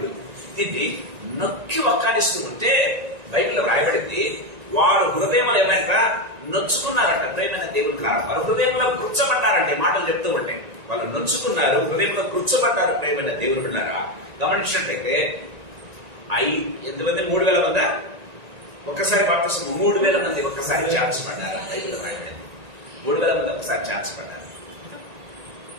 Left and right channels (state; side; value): late; left; 1.9 ms